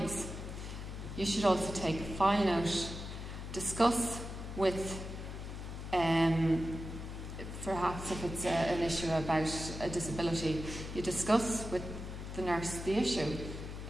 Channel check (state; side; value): noise; left; hum, 8 dB below the sound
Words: You should also take a file note, discuss with perhaps if it's an issue about a disability, you discuss with the nurse the issue.